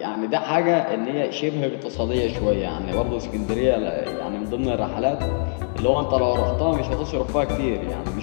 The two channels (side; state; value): right; silent; digital silence